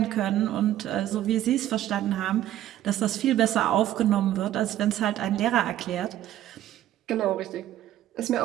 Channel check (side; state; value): left; quieter; 12.8 dB